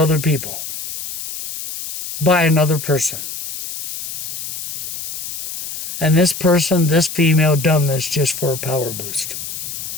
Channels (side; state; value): left; noise; hiss, 8 dB below the sound